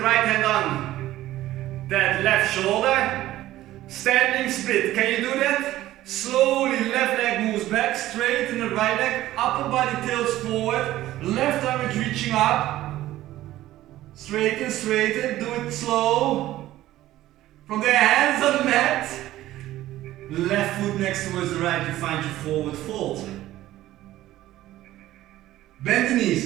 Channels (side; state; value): left; quieter; 14.9 dB